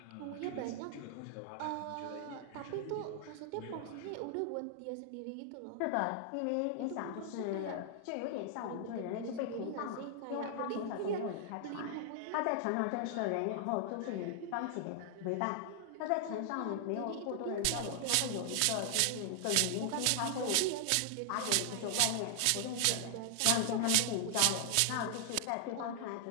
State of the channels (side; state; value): both; different; correlation 0.00